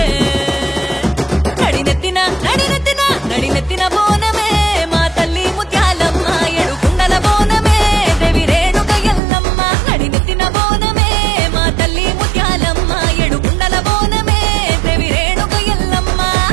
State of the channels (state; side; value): drops out; left; at 9.2 s